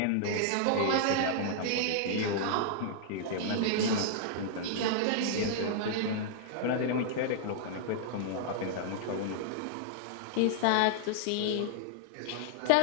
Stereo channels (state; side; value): different; both; correlation -0.01